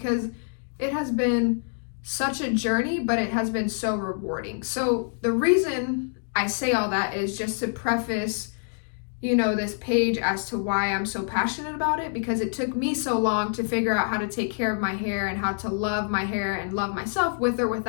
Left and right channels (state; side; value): silent; right; digital silence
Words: it has been such a journey, but it has been so rewarding. So the reason I say all that is just to preface, you know, this page as to why I'm so passionate about it, because it took me so long to figure out how to take care of my hair and how to love my hair and love myself with or